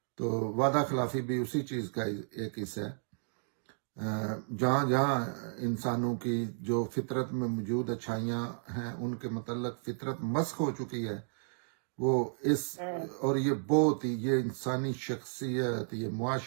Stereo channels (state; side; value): silent; left; digital silence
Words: تو وعدہ خلافی بھی اسی چیز کا ایک حصہ ہے۔ جہاں جہاں انسانوں کی جو فطرت میں موجود اچھائیاں ہیں ان کے متعلق فطرت مسخ ہو چکی ہے، وہ اور یہ بہت ہی، یہ انسانی شخصیت، یہ